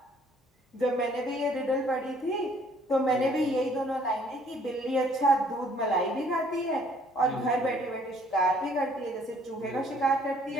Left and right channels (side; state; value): both; normal; correlation 0.61